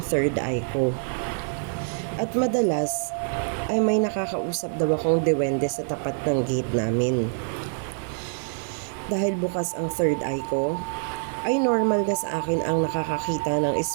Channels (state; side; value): silent; left; digital silence